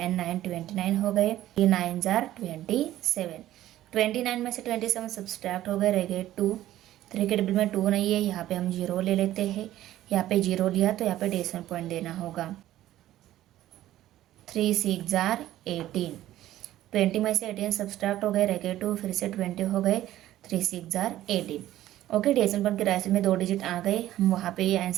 9 29 हो गए। 3 9 ज़ार 27, 29 में से 27 सब्सट्रैक्ट हो गए, रह गए 2। 3 के टेबल में 2 नहीं है, यहाँ पे हम 0 ले लेते हैं। यहाँ पे 0 लिया तो यहाँ पे डेसिमल पॉइंट देना होगा। 3 6 ज़ार 18, 20 में से 18 सब्सट्रैक्ट हो गए, रह गए 2, फिर से 20 हो गए। 3 6 ज़ार 18। ओके, डेसिमल पॉइंट के रास्ते में 2 डिजिट आ गए, हम वहाँ पे ये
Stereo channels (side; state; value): left; quieter; 13.9 dB